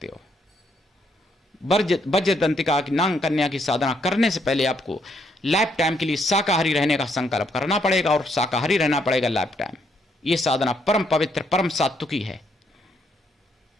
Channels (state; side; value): normal; both; correlation 0.73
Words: हो। वज्रदंतिका की नाग कन्या की साधना करने से पहले आपको लाइफ टाइम के लिए शाकाहारी रहने का संकल्प करना पड़ेगा, और शाकाहारी रहना पड़ेगा लाइफ टाइम। यह साधना परम पवित्र, परम सात्विकी है।